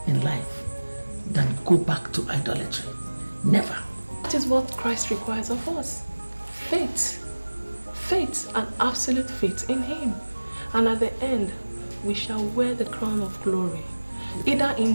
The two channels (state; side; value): inverted; both; correlation -1.00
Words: in life than go back to idolatry. Never. That is what Christ requires of us. Faith. Faith and absolute faith in Him. And at the end, we shall wear the crown of glory, either in